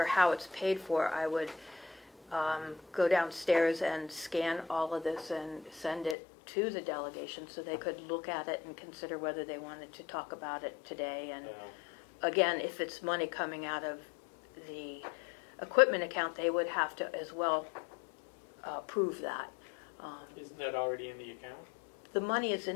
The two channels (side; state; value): right; drops out; at 6.2 s